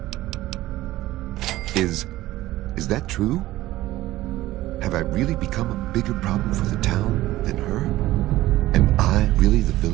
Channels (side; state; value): left; quieter; 16.3 dB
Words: Is that true? Have I really become a bigger problem for the town than her? Am I really the